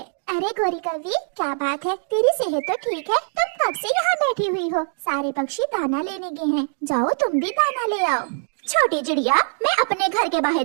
अरे गोरी कौवी, क्या बात है, तेरी सेहत तो ठीक है? तुम कब से यहाँ बैठी हुई हो? सारे पक्षी दाना लेने गए हैं, जाओ तुम भी दाना ले आओ। छोटी चिड़िया, मैं अपने घर के बाहर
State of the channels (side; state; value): left; silent; digital silence